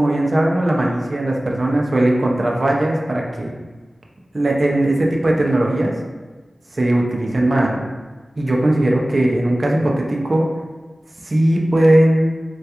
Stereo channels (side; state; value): both; normal; correlation 0.97